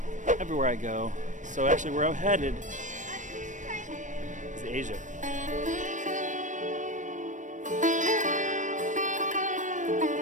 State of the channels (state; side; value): late; left; 0.37 ms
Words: everywhere I go. So actually where I'm headed is Asia.